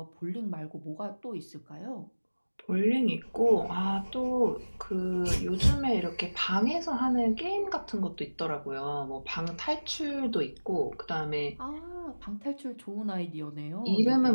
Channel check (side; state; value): both; inverted; correlation -1.00